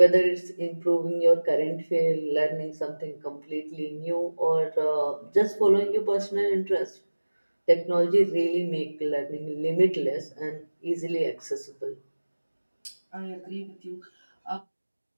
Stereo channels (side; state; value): both; inverted; correlation -1.00